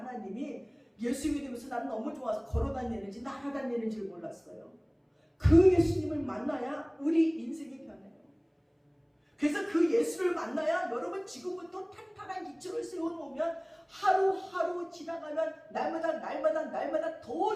예수 믿으면서 나는 너무 좋아서 걸어다니는지 날아다니는지를 몰랐어요. 그 예수님을 만나야 우리 인생이 변해요. 그래서 그 예수를 만나야 여러분 지금부터 탄탄한 기초를 세워놓으면 하루하루 지나가면 날마다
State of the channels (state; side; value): identical; both; correlation 1.00